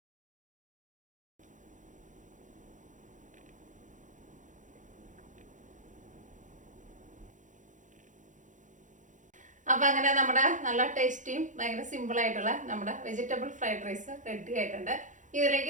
അപ്പോൾ അങ്ങനെ നമ്മുടെ നല്ല ടേസ്റ്റിയും ഭയങ്കര സിമ്പിളായിട്ടുള്ള നമ്മുടെ വെജിറ്റബിൾ ഫ്രൈഡ് റൈസ് റെഡി ആയിട്ടുണ്ട്.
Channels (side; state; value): left; late; 0.37 ms